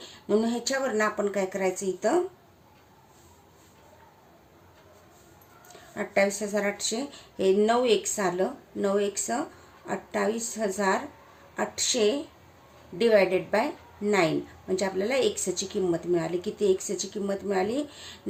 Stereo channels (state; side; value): identical; both; correlation 1.00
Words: म्हणून ह्याच्यावरनं आपण काय करायचं, इथं 28,800 हे 9x आलं. 9x 28,800 डिवायडेड बाय 9 म्हणजे आपल्याला एक्सची किंमत मिळाली. किती एक्सची किंमत मिळाली?